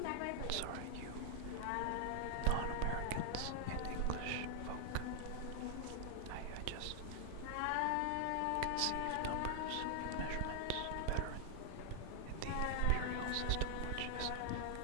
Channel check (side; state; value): both; different; correlation -0.01